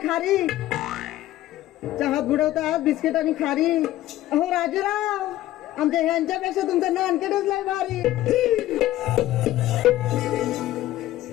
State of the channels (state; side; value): quieter; right; 14.8 dB